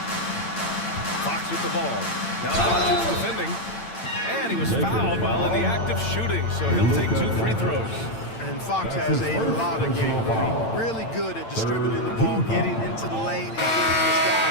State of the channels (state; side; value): late; right; 8.9 ms